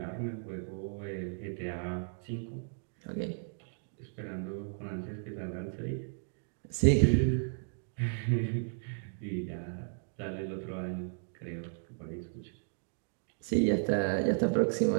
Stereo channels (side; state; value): left; silent; digital silence